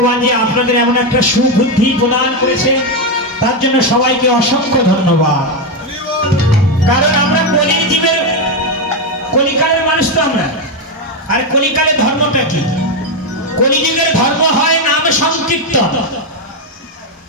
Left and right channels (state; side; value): normal; both; correlation 0.07